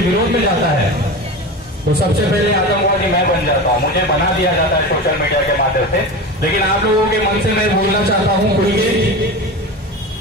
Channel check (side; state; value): both; normal; correlation 0.28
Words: विरोध में जाता है तो सबसे पहले आतंकवादी मैं बन जाता हूँ, मुझे बना दिया जाता है सोशल मीडिया के माध्यम से। लेकिन आप लोगों के मन से मैं बोलना चाहता हूँ खुल के,